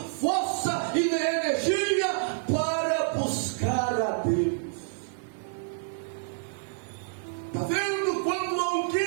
força e energia para buscar a Deus. Está vendo? Quando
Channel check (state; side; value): silent; left; 59 dB below the other